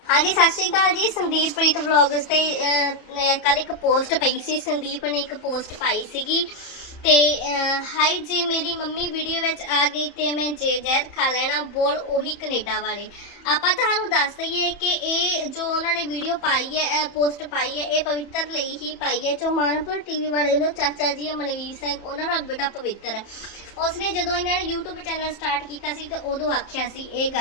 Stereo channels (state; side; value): late; right; 31 ms